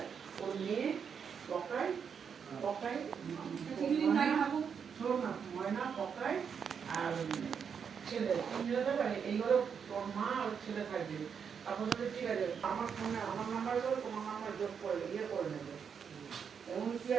ওর মেয়ে পকায় পকায় শোনো না, ময়না পকায় আর ছেলে এই ঘরে তোর মা আর ছেলে থাকবে। তারপর ঠিক আছে আমার ফোনে আমার নাম্বার করে তোমার নাম্বার যোগ করে ইয়ে করে নেবে। এমন কি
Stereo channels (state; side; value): quieter; left; 6.9 dB